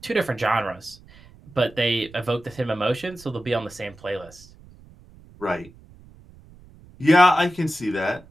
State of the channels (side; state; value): right; noise; rumble, 23 dB below the sound